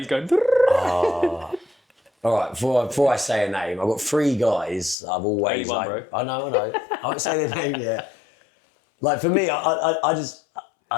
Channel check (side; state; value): right; drops out; at 5.0 s